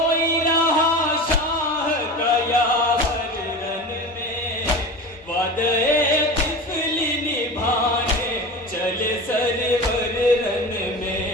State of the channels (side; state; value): both; normal; correlation 0.30